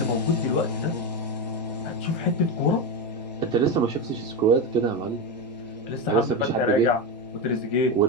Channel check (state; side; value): normal; both; correlation 0.14